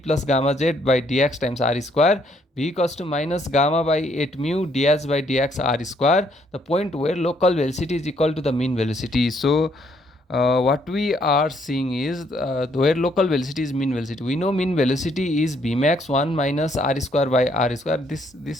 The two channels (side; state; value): both; normal; correlation 0.69